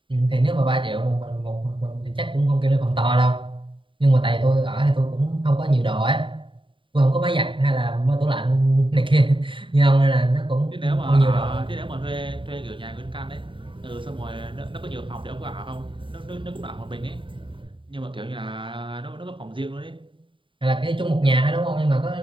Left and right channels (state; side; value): late; left; 0.25 ms